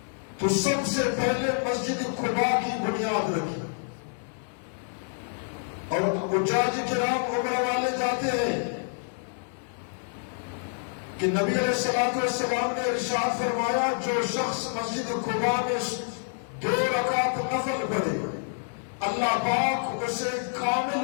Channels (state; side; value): silent; right; digital silence